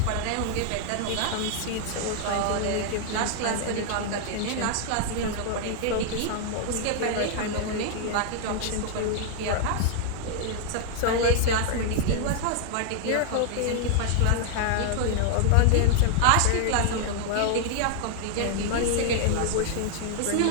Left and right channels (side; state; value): both; different; correlation 0.00